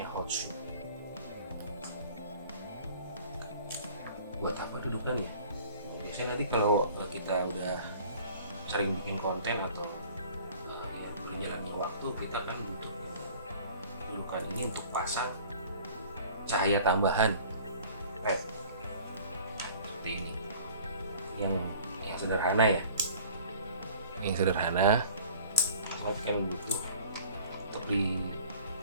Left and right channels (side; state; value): both; inverted; correlation -0.49